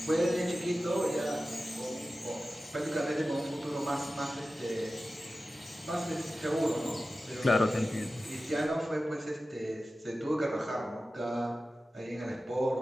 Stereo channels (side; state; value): both; normal; correlation 0.95